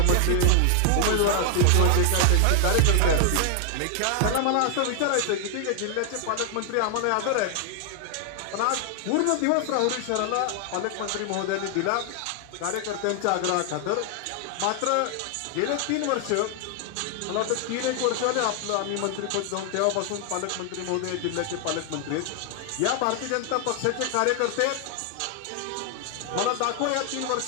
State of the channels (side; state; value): both; different; correlation 0.00